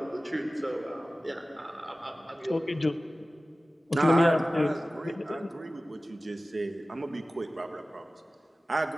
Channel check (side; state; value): both; normal; correlation 0.97